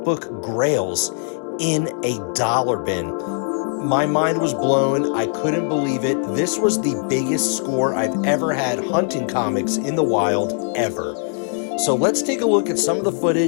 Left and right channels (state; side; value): silent; right; 59 dB below the other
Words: grails in a dollar bin. My mind was blown. I couldn't believe it. This was the biggest score I've ever had hunting comics in the wild ever. So let's take a look at some of the